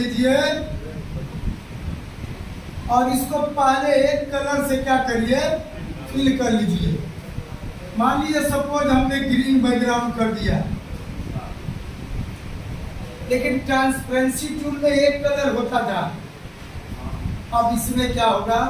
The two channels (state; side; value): identical; both; correlation 1.00